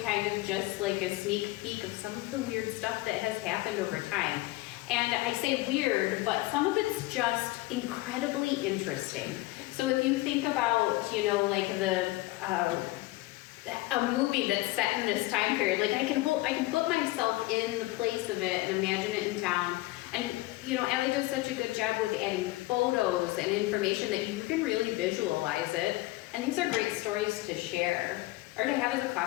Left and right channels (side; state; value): right; quieter; 19.5 dB